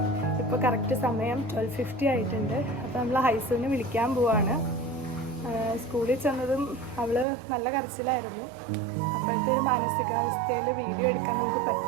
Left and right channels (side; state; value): left; drops out; at 7.2 s